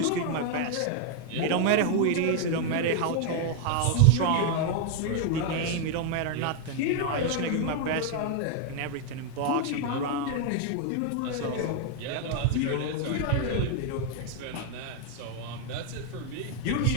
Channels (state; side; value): different; both; correlation 0.00